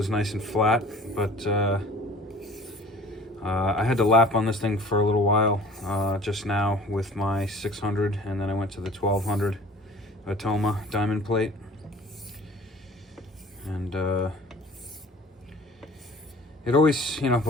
nice and flat, but I had to lap on this thing for a little while just now with my 600, and then I went to the 1200 Atoma diamond plate, and it always,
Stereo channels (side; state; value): both; normal; correlation 0.46